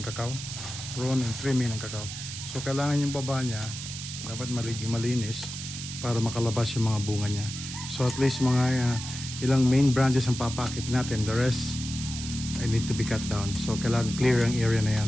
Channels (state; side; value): noise; right; hiss, 8 dB below the sound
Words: kakao. Prune and trimming ng kakao. So kailangan yung baba niya dapat malinis para makalabas yung mga bunga niya. So at least mga ilang main branches ang papakit natin. The rest I need to be cut down. So kailangan clear ang area na